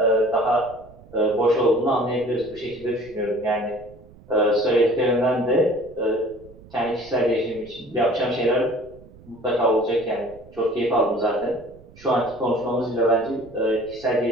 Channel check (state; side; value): noise; right; rumble, 23 dB below the sound